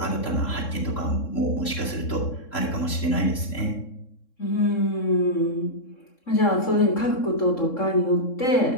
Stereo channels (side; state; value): right; late; 3.7 ms